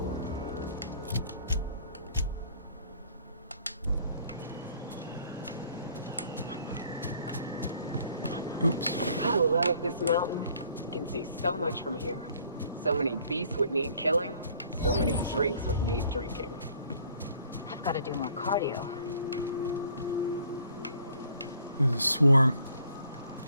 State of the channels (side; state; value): both; inverted; correlation -0.58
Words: Oops. I love this mountain. You can see so much from here. So many beasts would need killing. So many drinks would need drinking. I've got to do more cardio. There's a swarm.